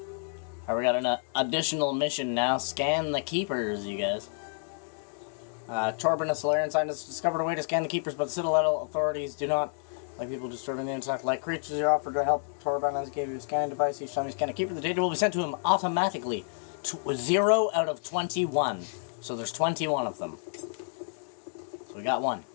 We got an additional mission now. Scan the Keepers, you guys. Torben, a Solarian scientist, discovered a way to scan the Keepers, but the Citadel authorities do not like people disturbing the insect. Like creatures, you offered to help Torben as he gave you a scanning device. Each time you scan a Keeper, the data will be sent to him automatically. 0 out of 21. So there's 21 of them. So we got one.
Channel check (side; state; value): right; silent; 58 dB below the other